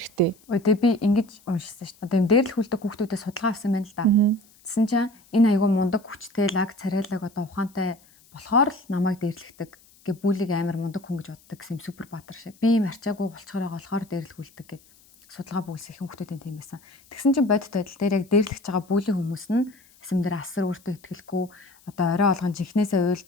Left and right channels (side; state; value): left; noise; hiss, 28 dB below the sound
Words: Ой тэгээ би ингэж уншсан шүү дээ. Одоо юм дээрлэх үлдэх хүүхдүүдээ судалгаа авсан байна л да. Тэсэн чинь энэ айгүй мундаг хүчтэй лаг царайлаг одоо ухаантай болохоор л намайг дээрлэгдэг. Гэ бүлийг амар мундаг хүн гэж боддог гэсэн юм супер баатар шиг. Би юм арчаагүй болчхоор байгаа болохоор дээрлэх үлдэг гэд судалгаа бүгсэх хүүхдүүдийн тийм байсан. Тэгсэн чинь бодит байдал дээр яг дээрлэгч байгаа бүлийн хүмүүс нь эсэм дээр асар өөртөө итгэлгүй одоо орой олгон жихнээсээ